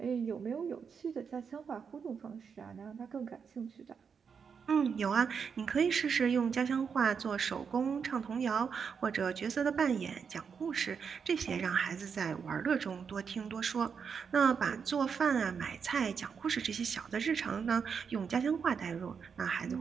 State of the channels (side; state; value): left; quieter; 6.3 dB